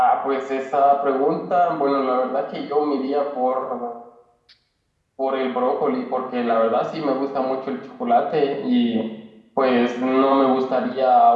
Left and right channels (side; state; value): both; identical; correlation 1.00